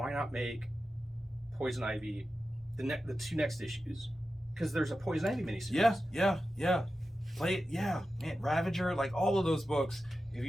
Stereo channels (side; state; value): both; normal; correlation 0.92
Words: not make Poison Ivy the 2 next issues? Because there's a Poison Ivy miniseries. Yeah. Play it. Yeah, man. Ravager, like all of those books. If